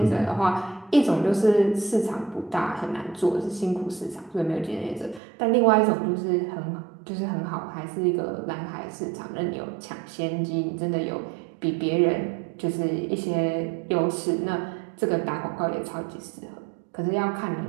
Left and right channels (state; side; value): drops out; left; at 5.2 s